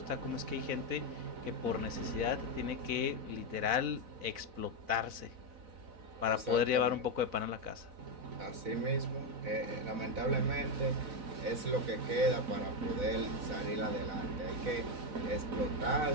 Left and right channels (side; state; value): left; late; 4.0 ms